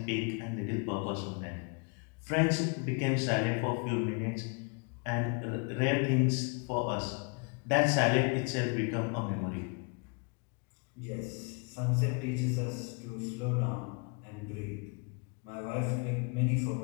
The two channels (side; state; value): right; quieter; 34.8 dB